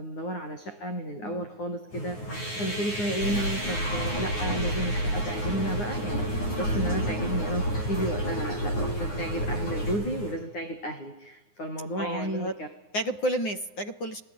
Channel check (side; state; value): right; late; 9.7 ms